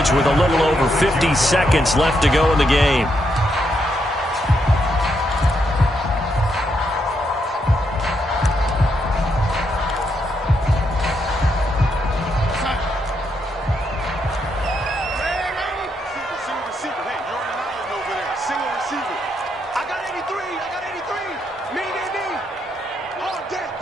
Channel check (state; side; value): normal; both; correlation 0.79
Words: with a little over 50 seconds left to go in the game.